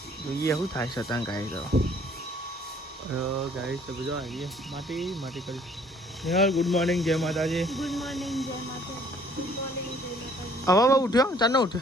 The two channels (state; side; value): normal; both; correlation 0.59